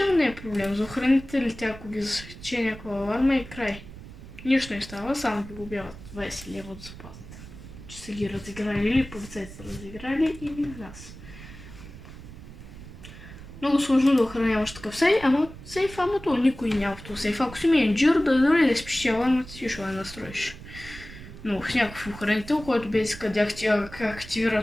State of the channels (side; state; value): right; noise; rumble, 15 dB below the sound